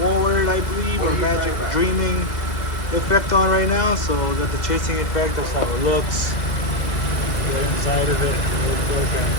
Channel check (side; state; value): right; late; 2.3 ms